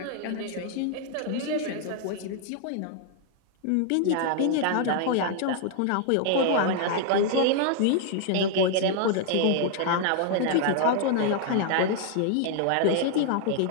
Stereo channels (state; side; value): different; both; correlation 0.00